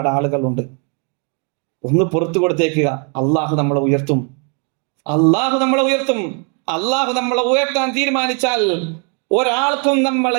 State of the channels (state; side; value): quieter; left; 38.4 dB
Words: ആളുകളുണ്ട്. ഒന്ന് പുറത്തു കൊടുത്തേക്കുക. അള്ളാഹു നമ്മളെ ഉയർത്തും, അള്ളാഹു നമ്മളെ ഉയർത്തും. അള്ളാഹു നമ്മളെ ഉയർത്താൻ തീരുമാനിച്ചാൽ ഒരാൾക്കും